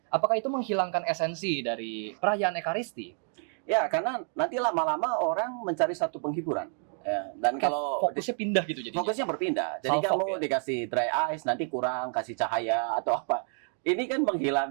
Apakah itu menghilangkan esensi dari perayaan Ekaristi? Ya, karena nanti lama-lama orang mencari satu penghiburan. Ya, dan kalau Fokusnya pindah gitu jadinya. fokusnya berpindah. Jadi Salfok, kamu ya? dikasih dry ice, nanti kurang kasih cahaya atau apa. Ini kan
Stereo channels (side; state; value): left; silent; 57 dB below the other